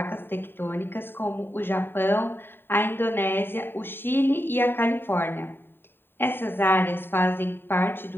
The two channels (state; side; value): late; right; 0.10 ms